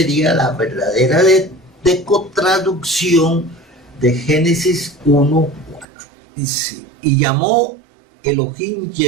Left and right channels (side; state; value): left; drops out; at 5.9 s